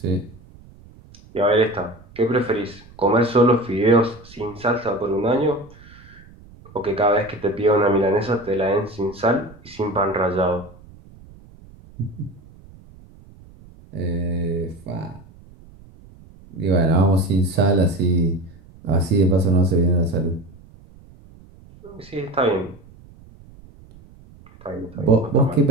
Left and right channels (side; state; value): right; noise; rumble, 23 dB below the sound